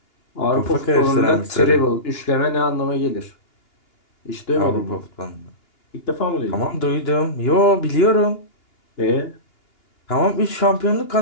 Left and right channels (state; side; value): late; right; 2.8 ms